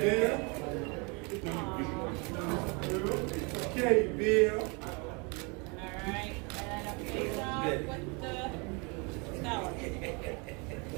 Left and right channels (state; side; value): quieter; left; 31.2 dB